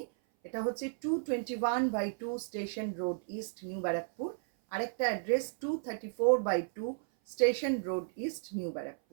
এটা হচ্ছে 221/2 station road east, new Barrackpore. আরেকটা address 234/2 station road east, new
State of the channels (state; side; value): silent; left; 55 dB below the other